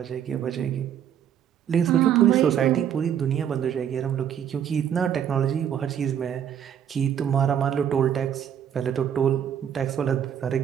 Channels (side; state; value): left; quieter; 9.2 dB